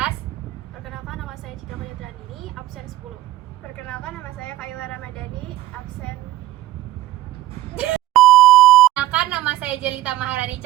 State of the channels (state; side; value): quieter; left; 15.5 dB